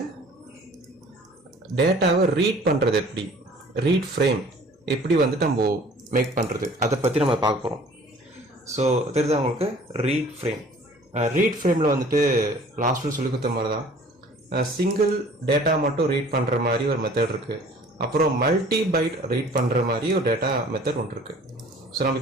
டேட்டாவை ரீட் பண்ணுறது எப்படி, ரீட் ஃப்ரேம் எப்படி வந்துட்டு நம்ம மேக் பண்ணுறது, அதை பற்றி நம்ம பார்க்க போகிறோம். ஸோ தெரியுது உங்களுக்கு ரீட் ஃப்ரேம். ரீட் ஃப்ரேமில் வந்துட்டு லாஸ்ட்டில் சொல்லி கொடுத்த மாதிரி தான் சிங்கிள் டேட்டா மட்டும் ரீட் பண்ணுற மாதிரி ஒரு மெத்தட் இருக்குது. அப்புறம் மல்டி பைட் ரீட் பண்ணுற மாதிரி ஒரு டேட்டா மெத்தட் ஒன்று இருக்குது. ஸோ நம்ம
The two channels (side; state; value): both; normal; correlation 0.51